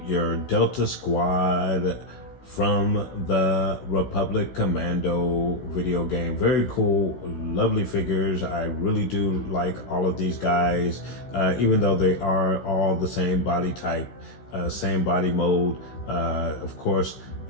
your Delta Squad from the Republic Commando video game. Very cool, lovely figures. I really do like all of these guys, even though they are all the same body type, same body mode. Of course,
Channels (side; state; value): right; late; 16 ms